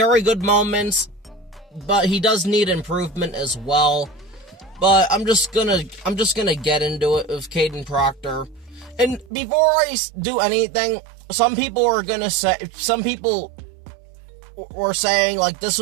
good moments, but he does need improvement as well. But I'm just gonna get into it with Kadyn Proctor. And before I do anything, some people were saying like this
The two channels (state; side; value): drops out; left; at 9.3 s